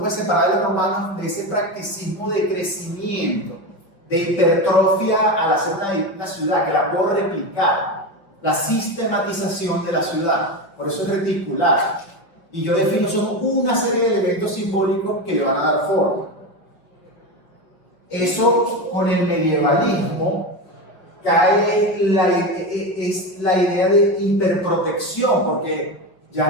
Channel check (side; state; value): right; late; 5.4 ms